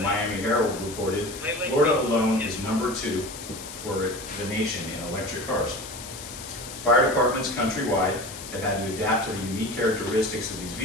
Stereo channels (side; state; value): left; noise; hiss, 12 dB below the sound